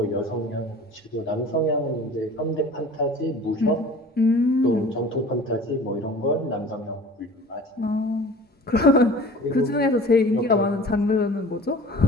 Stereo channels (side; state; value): both; normal; correlation 0.43